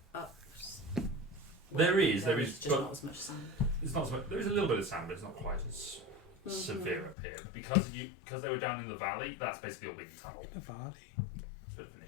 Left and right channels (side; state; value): right; drops out; at 7.2 s